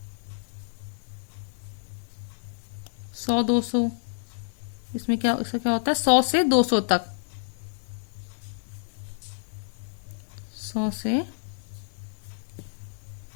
सौ 200, इसमें क्या, इसका क्या होता है, 100 से 200 तक। 100 से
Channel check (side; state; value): right; silent; digital silence